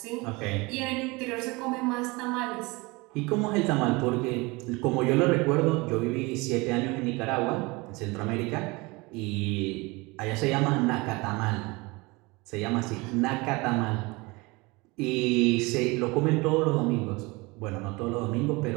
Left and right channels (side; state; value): left; quieter; 24.7 dB